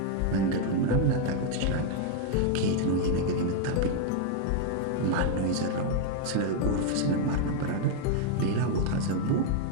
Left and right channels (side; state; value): both; different; correlation 0.00